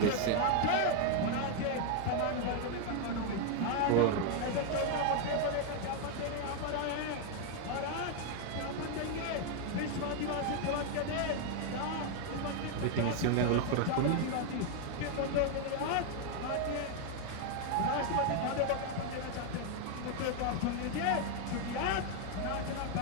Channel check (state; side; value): different; both; correlation 0.00